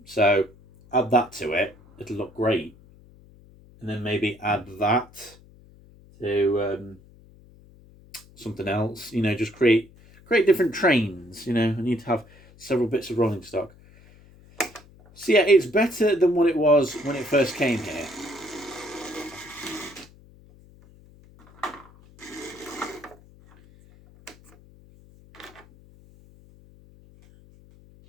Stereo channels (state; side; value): noise; left; hum, 25 dB below the sound